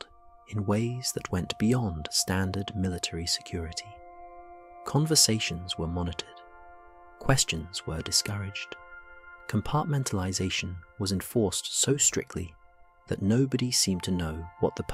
in ways that went beyond standard military security. Conversations were monitored. Questions were discouraged. Compartmentalization was enforced so strictly that nobody seemed to know what the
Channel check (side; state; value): both; identical; correlation 1.00